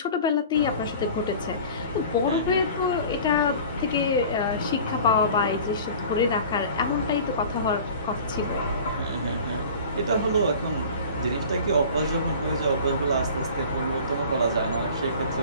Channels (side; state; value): both; inverted; correlation -0.41